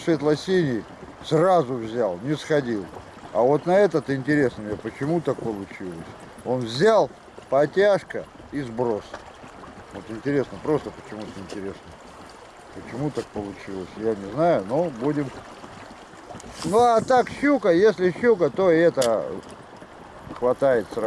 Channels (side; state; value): both; identical; correlation 1.00